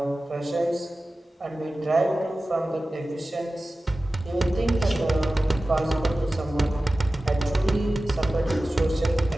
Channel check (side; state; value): both; normal; correlation 0.96